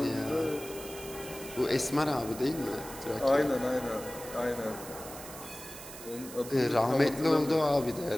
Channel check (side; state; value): right; noise; hiss, 13 dB below the sound